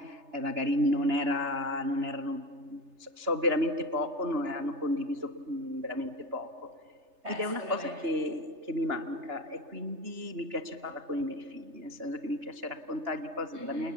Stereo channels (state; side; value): late; left; 3.3 ms